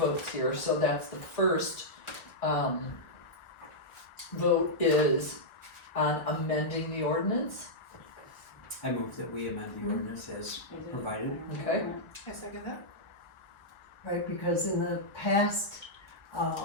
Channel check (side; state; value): right; late; 1.4 ms